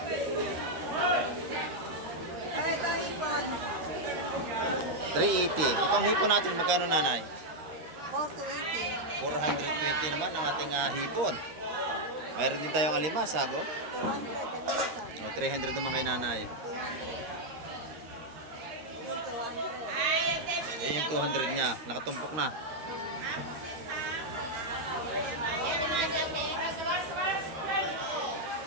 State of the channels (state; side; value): late; left; 13 ms